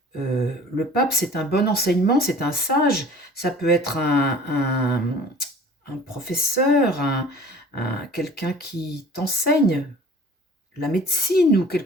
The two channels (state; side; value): normal; both; correlation 0.46